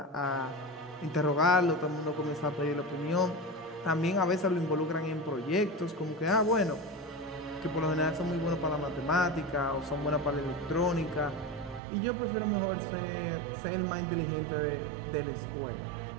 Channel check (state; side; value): drops out; left; at 11.8 s